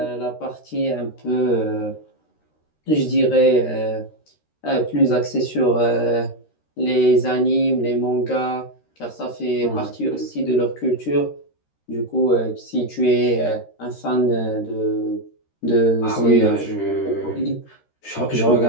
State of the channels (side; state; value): right; late; 13 ms